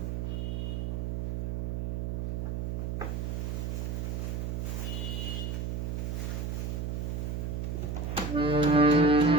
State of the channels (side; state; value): right; noise; hum, 1 dB below the sound